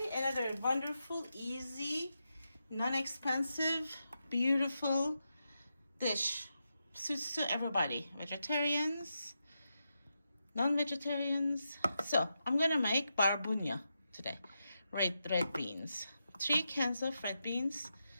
another wonderful, easy, non-expensive, beautiful dish. Suits to everybody. Vegetarians, non-vegetarians. So I'm gonna make barbunya today. Red beans. 3 cans of red beans,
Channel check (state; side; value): inverted; both; correlation -0.87